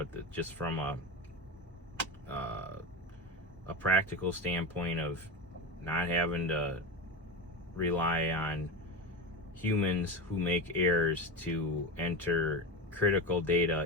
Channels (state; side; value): normal; both; correlation 0.22